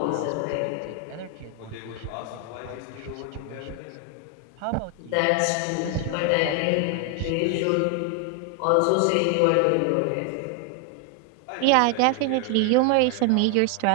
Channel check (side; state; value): both; different; correlation 0.00